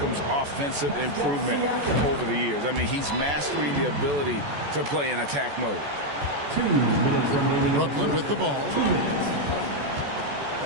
offensive improvement over the years. I mean, he's mastering the ability to play in attack mode. Brooklyn with the ball.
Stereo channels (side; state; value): left; late; 14 ms